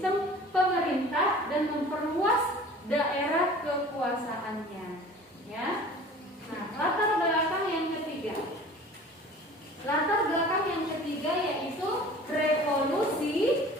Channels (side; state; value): both; normal; correlation 0.44